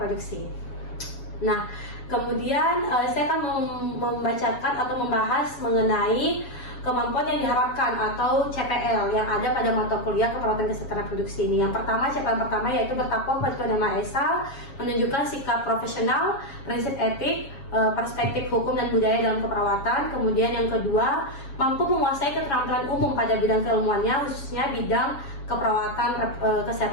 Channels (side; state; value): right; late; 7.2 ms